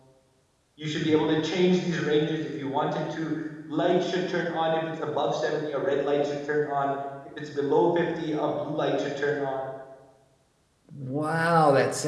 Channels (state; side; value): identical; both; correlation 1.00